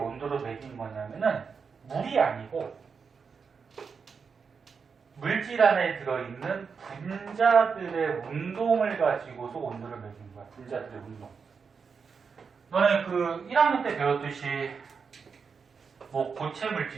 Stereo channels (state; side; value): quieter; left; 5.7 dB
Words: 매긴 거냐면은 물이 아니고 물질 안에 들어있는 분자들의 운동을 가지고서 온도를 매긴 거야. 분자들의 운동. 너네 그 1학년 때 배웠듯이 뭐 고체